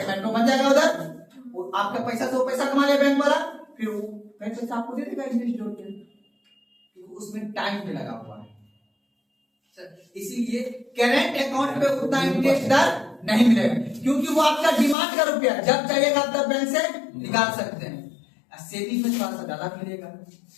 मेट्रो बन जाएगा उधर, आपका पैसा से वो पैसा कमा ले बैंक वाला, फिर वो पैसा आपको दे देगा इंटरेस्ट जोड़ के, उसमें टाइम भी लगा हुआ है। इसीलिए करंट अकाउंट पे उतना इंटरेस्ट दर नहीं मिलेगा, क्योंकि वो आपका डिमांड का रुपया, जब चाहिएगा तब बैंक से निकाल सकते हैं। सेविंग में थोड़ा सा ज्यादा मिलेगा,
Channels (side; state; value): right; drops out; at 15.0 s